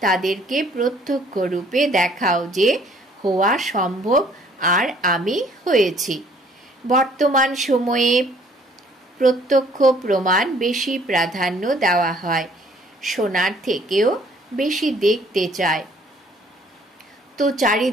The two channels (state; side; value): normal; both; correlation 0.59